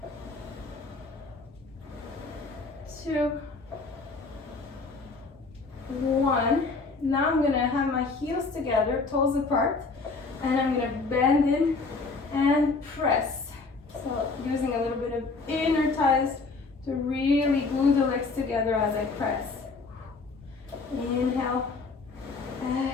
2, 1. Now I'm gonna have my heels together, toes apart, and I'm gonna bend in and press. So using a little bit of inner thighs to really glue the legs together as I press. Inhale,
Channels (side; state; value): right; quieter; 4.0 dB